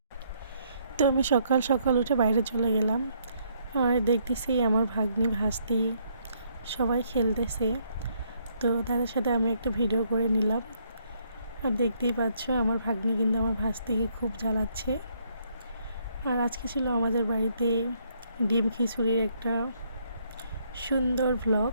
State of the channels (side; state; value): both; inverted; correlation -0.70